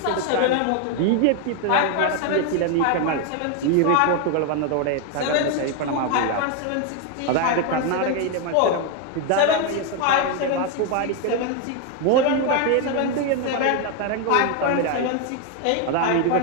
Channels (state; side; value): different; both; correlation 0.01